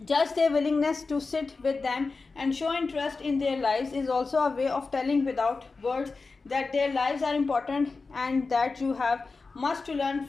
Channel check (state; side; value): quieter; right; 4.1 dB